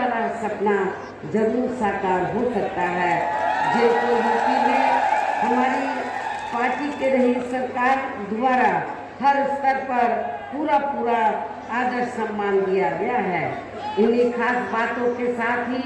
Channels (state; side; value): identical; both; correlation 1.00